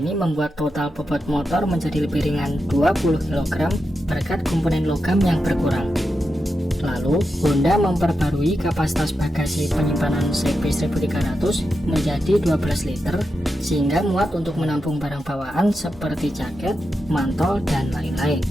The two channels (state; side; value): normal; both; correlation 0.88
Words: membuat total bobot motor menjadi lebih ringan 20 kg berkat komponen logam yang berkurang. Lalu, Honda memperbarui kapasitas bagasi penyimpanan CB 1300 menjadi 12 liter, sehingga muat untuk menampung barang bawaan seperti jaket, mantol, dan lain-lain.